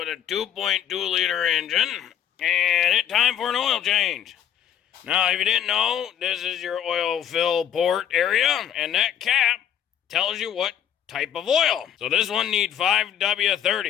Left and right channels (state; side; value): quieter; right; 9.7 dB